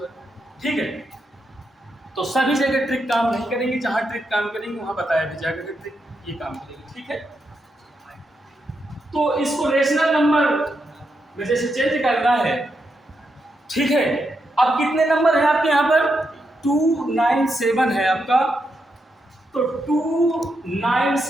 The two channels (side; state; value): both; normal; correlation 0.83